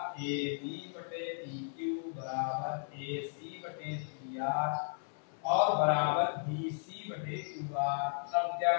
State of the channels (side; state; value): right; silent; 54 dB below the other